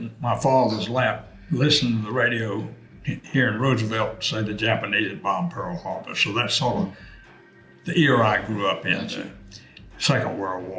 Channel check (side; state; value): both; identical; correlation 1.00